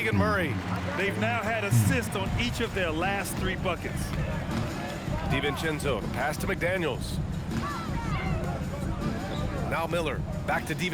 Murray. They've now had assists on each of their last 3 buckets. DiVincenzo, pass to McDaniels. Now Miller, back to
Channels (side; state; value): both; identical; correlation 1.00